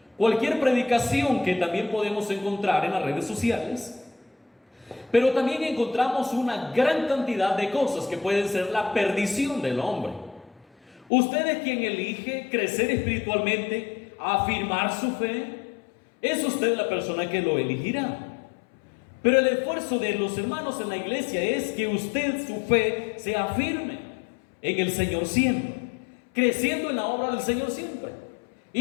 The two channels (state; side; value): drops out; right; at 11.1 s